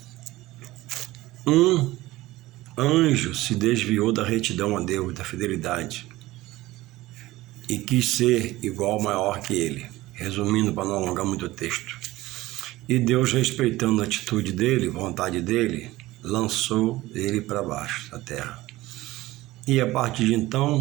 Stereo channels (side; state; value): left; quieter; 17.9 dB